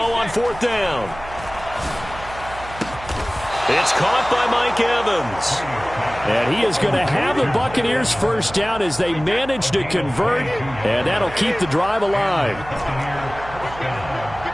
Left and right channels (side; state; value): right; noise; hum, 15 dB below the sound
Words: on 4th down. It's caught by Mike Evans. And he is going to have the Buccaneers first down as they manage to convert, and that'll keep the drive alive.